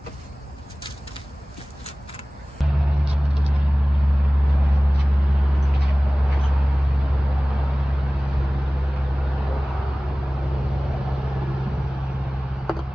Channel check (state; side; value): normal; both; correlation 0.98